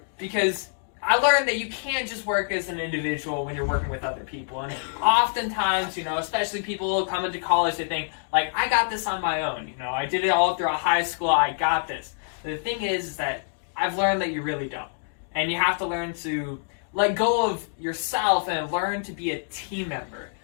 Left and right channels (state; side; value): silent; right; digital silence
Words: Because I learned that you can't just work as an individual when you're working with other people. And oftentimes, especially people coming to college, they think, like, I got this on my own. I did it all throughout high school. I got this. The thing is that I've learned that you really don't. And you have to learn to let go of yourself and learn to be a team member.